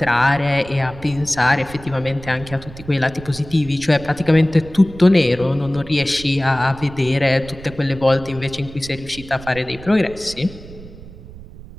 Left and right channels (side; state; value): right; noise; rumble, 16 dB below the sound